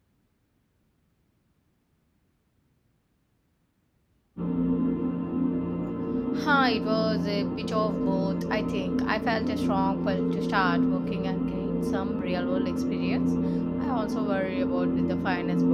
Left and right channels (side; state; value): both; identical; correlation 1.00